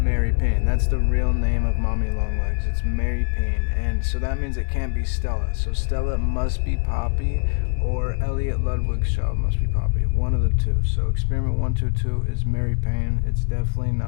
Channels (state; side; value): silent; right; digital silence